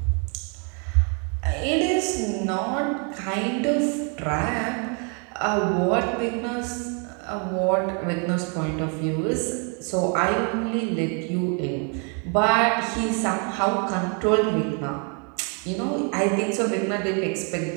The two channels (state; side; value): quieter; left; 38.0 dB